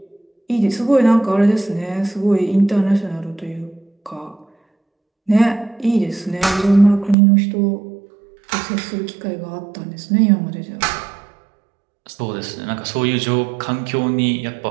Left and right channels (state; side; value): drops out; left; at 7.2 s